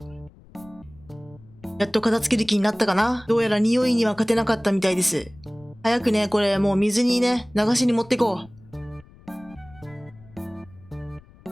やっと片付ける気になったかな。どうやら匂いには勝てなかったみたいです。早くね、これもう水にね、流しに持ってこう。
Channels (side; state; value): left; noise; rumble, 24 dB below the sound